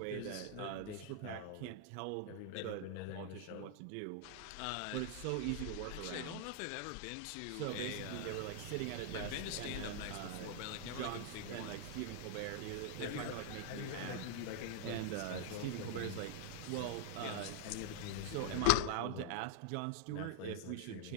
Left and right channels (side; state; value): both; different; correlation 0.00